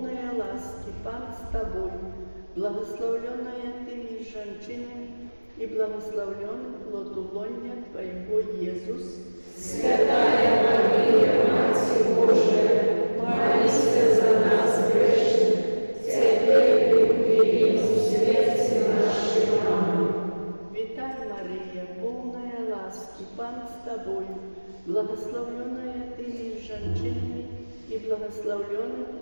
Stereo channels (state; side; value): inverted; both; correlation -1.00